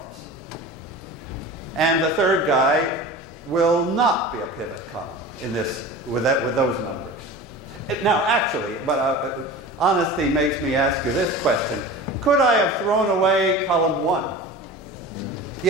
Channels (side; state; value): both; normal; correlation 0.35